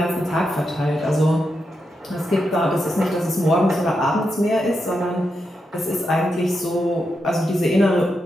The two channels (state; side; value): normal; both; correlation 0.85